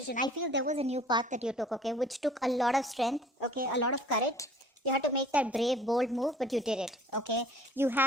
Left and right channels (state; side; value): normal; both; correlation 0.51